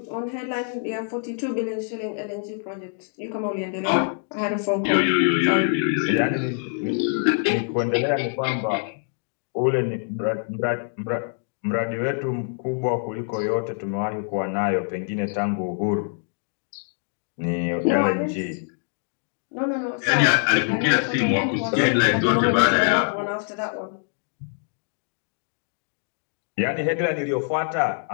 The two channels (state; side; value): silent; right; 59 dB below the other